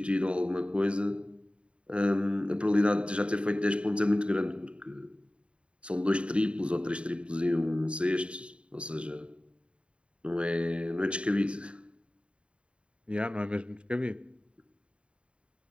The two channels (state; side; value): late; left; 0.058 ms